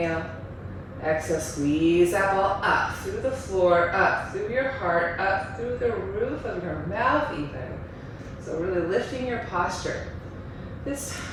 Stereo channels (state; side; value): identical; both; correlation 1.00